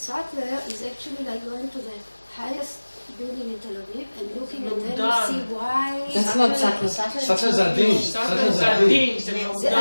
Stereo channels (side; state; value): both; inverted; correlation -1.00